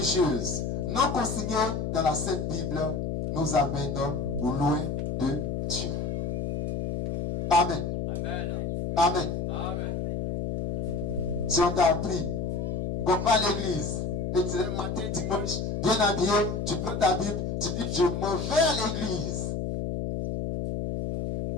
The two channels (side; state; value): left; noise; hum, 2 dB below the sound